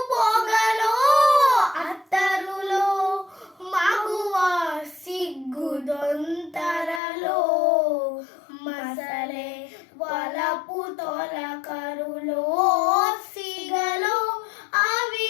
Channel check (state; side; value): drops out; right; at 7.0 s